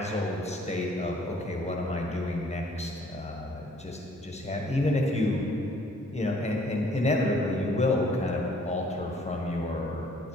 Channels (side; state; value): both; normal; correlation 0.59